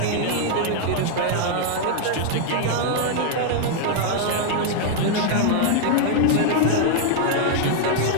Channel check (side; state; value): both; different; correlation 0.00